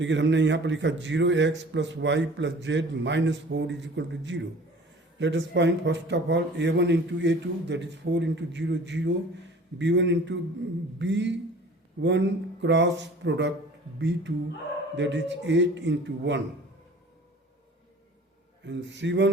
हमने यहाँ पर लिखा 0x plus y plus z minus 4 is equal to 0. Let us find first of all A1 into A2, that is 4 into 0, 0. B1 into B1 cross product B2, that is 8 into 1. And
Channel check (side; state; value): both; normal; correlation 0.46